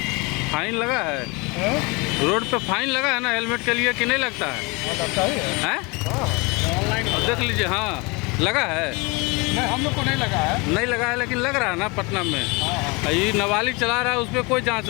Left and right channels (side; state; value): right; quieter; 27.4 dB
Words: फाइन लगा है? रोड पे फाइन लगा है ना हेलमेट के लिए कि नहीं लगता है? हैं? ऑनलाइन देख लीजिए, हाँ लगा है। नहीं, हम लोग को नहीं लगा है। नहीं लगा है लेकिन लग रहा है ना पटना में। ये नाबालिग चला रहा है, उस पर कोई जांच